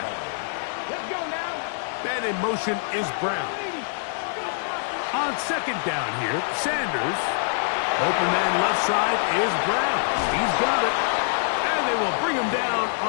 Let's go now. And in motion is Brown. On 2nd down here, Sanders. Open man left side is Brown. He's got it. And they will bring him down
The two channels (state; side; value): silent; right; digital silence